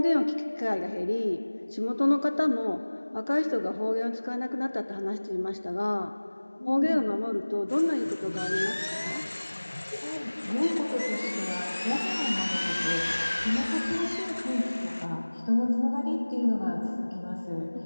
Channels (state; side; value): inverted; both; correlation -1.00